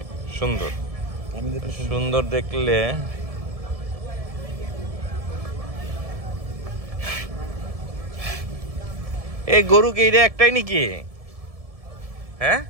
সুন্দর। সুন্দর দেখলে এই গরু কি এটা একটাই নাকি? হ্যাঁ,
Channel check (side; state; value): left; late; 1.7 ms